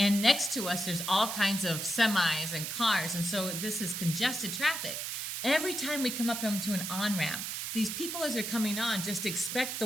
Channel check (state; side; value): noise; right; hiss, 4 dB below the sound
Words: next to us there's all kinds of semis and cars, and so this is congested traffic. Every time we come up to an on-ramp, these people as they're coming on just expect the